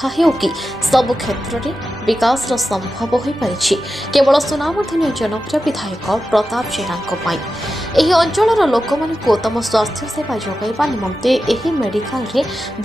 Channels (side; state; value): both; normal; correlation 0.92